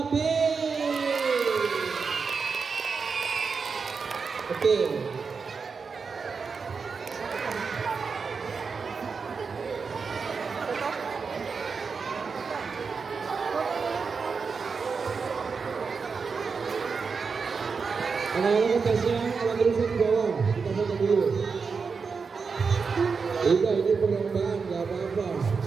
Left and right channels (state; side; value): quieter; left; 5.2 dB